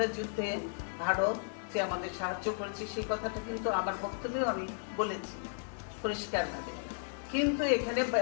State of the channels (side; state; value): right; silent; digital silence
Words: যুদ্ধে ভারত যে আমাদের সাহায্য করেছে সেই কথাটা কিন্তু আমার বক্তব্যে আমি বলেছি পরিষ্কারভাবে। কিন্তু এখানে